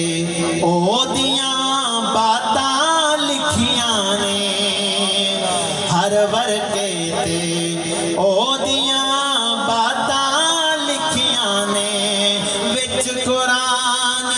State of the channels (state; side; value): identical; both; correlation 1.00